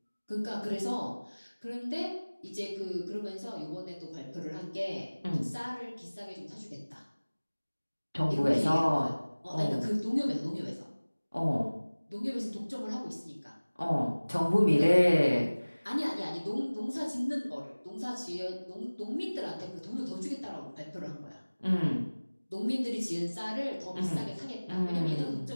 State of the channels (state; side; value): inverted; both; correlation -1.00